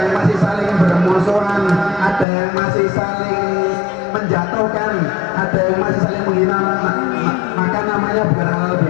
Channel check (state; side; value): drops out; right; at 2.2 s